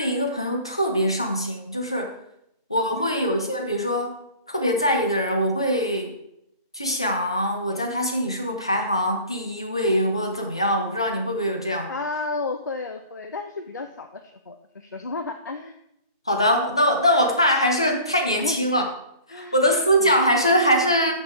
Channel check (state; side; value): inverted; both; correlation -0.44